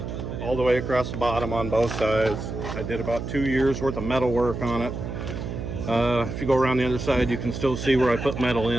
all the way across the bottom on both sides. I did about 2 years worth of metal work on it. If you go around the other side, you can still see where I put metal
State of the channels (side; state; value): right; noise; hum, 6 dB below the sound